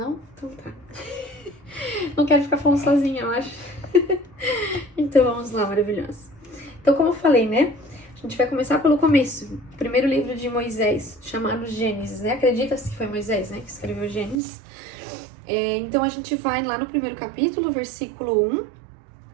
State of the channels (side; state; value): left; drops out; at 14.4 s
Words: Então tá. Não quero ficar falando sozinha, eu acho. Então vamos lá, maravilhoso. Então, como eu falei, né? A gente vai começar pelo começo. O primeiro livro de Moisés, chamado Gênesis, né? Acredita-se que foi Moisés, né? Que escreveu Gênesis. Então a gente vai lá no primeiro capítulo, versículo 1